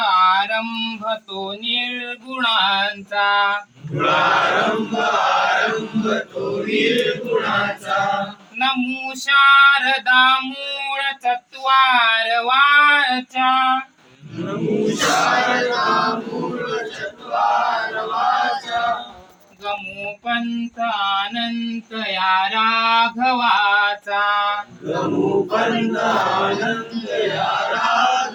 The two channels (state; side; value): identical; both; correlation 1.00